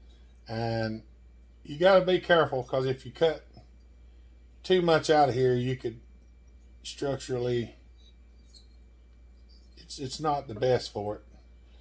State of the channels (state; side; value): identical; both; correlation 1.00